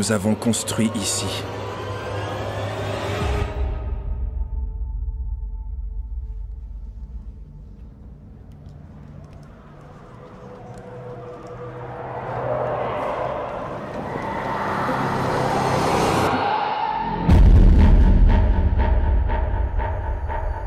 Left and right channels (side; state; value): both; identical; correlation 1.00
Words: avons construit ici.